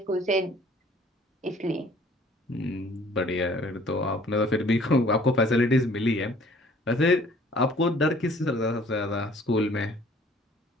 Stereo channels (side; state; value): both; normal; correlation 0.55